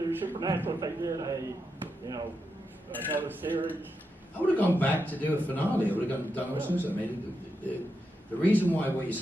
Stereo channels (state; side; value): normal; both; correlation 0.86